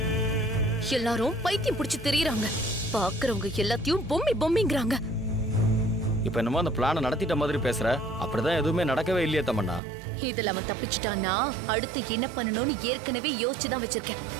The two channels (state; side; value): drops out; left; at 9.8 s